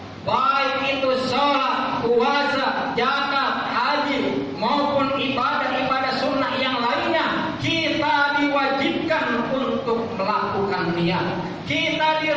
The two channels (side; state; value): both; identical; correlation 1.00